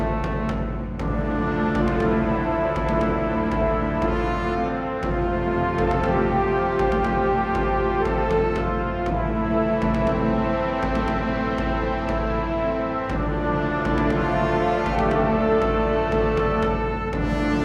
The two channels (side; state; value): both; identical; correlation 1.00